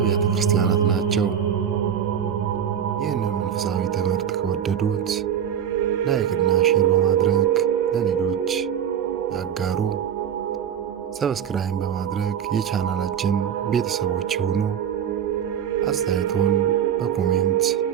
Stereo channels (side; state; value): left; quieter; 8.9 dB